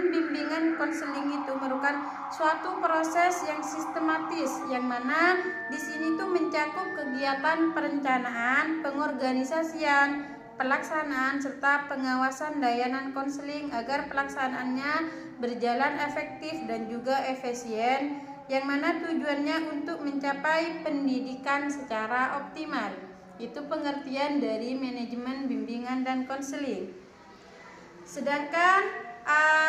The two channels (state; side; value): identical; both; correlation 1.00